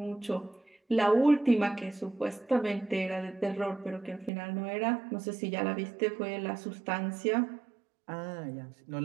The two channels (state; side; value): drops out; left; at 4.3 s